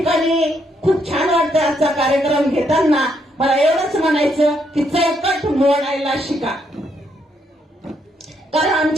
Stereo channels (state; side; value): normal; both; correlation 0.75